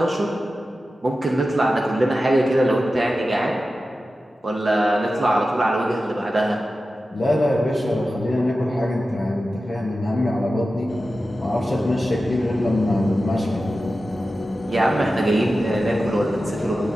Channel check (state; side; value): normal; both; correlation 0.93